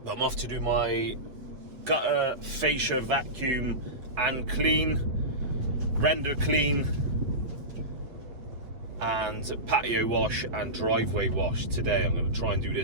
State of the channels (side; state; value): left; late; 8.2 ms